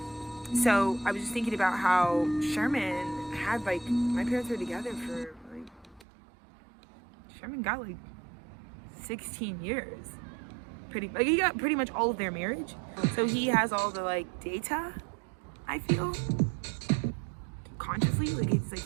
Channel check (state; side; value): drops out; left; at 6.1 s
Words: So I was just thinking about how Sherman had like, my parents were together for like, Sherman got like 16 years, he got pretty much all of their marriage. So he has all the like data, I feel, consciously. Like it's